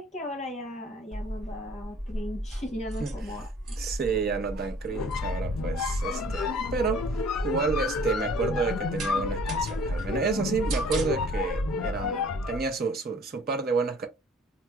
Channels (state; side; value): normal; both; correlation 0.53